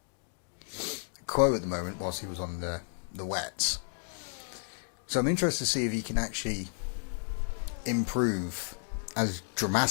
Quo at the moment whilst he was on the wets. So I'm interested to see if he can actually improve as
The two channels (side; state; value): right; silent; 56 dB below the other